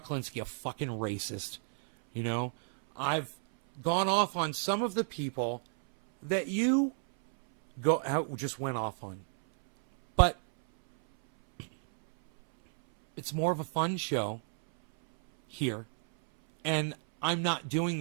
Klinsky a fucking racist. I've gone off on some of the people that you just went off on. But it's more of a fun show here. And I'm not doing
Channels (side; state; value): left; silent; 57 dB below the other